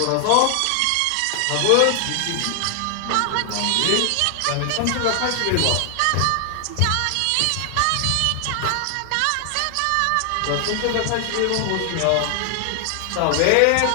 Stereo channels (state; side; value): different; both; correlation 0.00